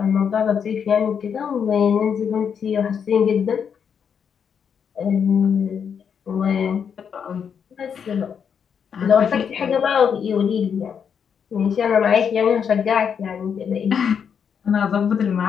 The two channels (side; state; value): right; quieter; 7.3 dB